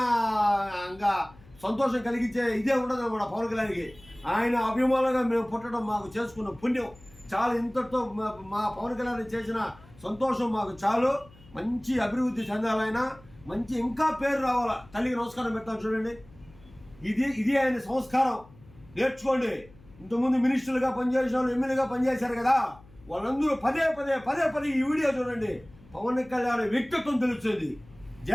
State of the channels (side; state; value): left; noise; hum, 24 dB below the sound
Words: ఇంకా సంతోషం కలిగించే ఇదే ఉండదు అన్నమాట పవన్ కళ్యాణ్కి. ఆయన అభిమానులుగా మేము పుట్టడం మాకు చేసుకున్న పుణ్యం చాలు. ఇంతటితో మా పవన్ కళ్యాణ్ చేసిన సంతోషం మాకు చాలు. మంచి అభివృద్ధి చెందాలైనా, మంచి ఇంకా పేరు రావాలా. తల్లికి నమస్కారం పెడతాను చూడండి. ఇది ఆయన సంస్కారం. నేర్చుకోండి. ఇంతకుముందు మినిస్టర్లుగా పనిచేసిన వాళ్ళు, ఎమ్మెల్యేగా పనిచేశారు కదా, వాళ్ళందరూ పదే ఈ వీడియో చూడండి. పవన్ కళ్యాణ్ వ్యక్తిత్వం తెలుస్తుంది.